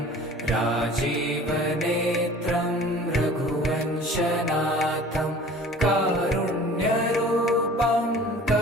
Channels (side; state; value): both; normal; correlation 0.45